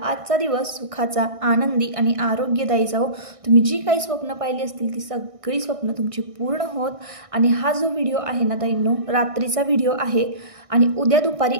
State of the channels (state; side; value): late; left; 1.6 ms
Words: आजचा दिवस सुखाचा, आनंदी आणि आरोग्यदायी जाओ। तुम्ही जी काही स्वप्न पाहिली असतील ती सगळी स्वप्न तुमची पूर्ण होत। आणि हा जो व्हिडिओ आहे ना ताईंनो, रात्रीचा व्हिडिओ आहे आणि उद्या दुपारी